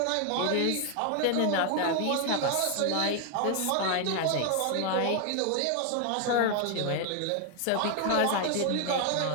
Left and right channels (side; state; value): both; different; correlation 0.00